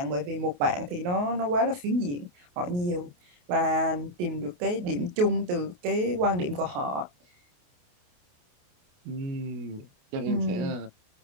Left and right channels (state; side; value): late; left; 28 ms